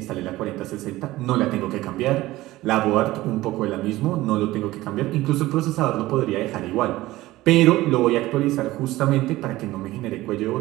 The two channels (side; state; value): left; quieter; 17.4 dB